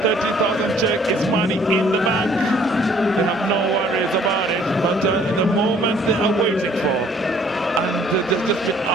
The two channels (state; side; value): normal; both; correlation 0.59